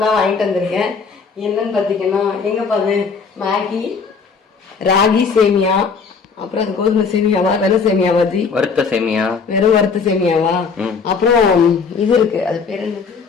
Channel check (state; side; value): quieter; right; 5.4 dB